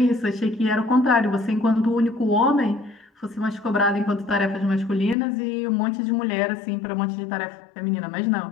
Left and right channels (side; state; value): right; drops out; at 5.2 s